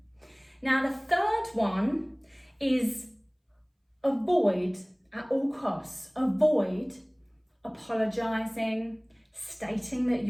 Now, the third one is avoid at all costs. Avoid apologizing, stating that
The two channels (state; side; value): identical; both; correlation 1.00